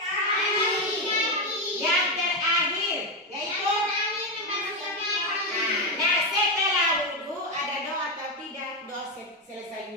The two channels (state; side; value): normal; both; correlation 0.09